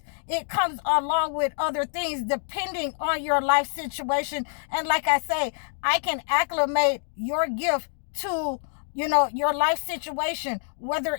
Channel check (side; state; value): right; silent; digital silence